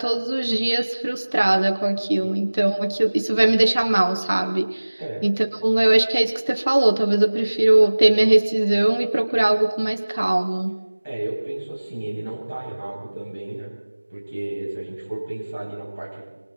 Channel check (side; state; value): both; inverted; correlation -1.00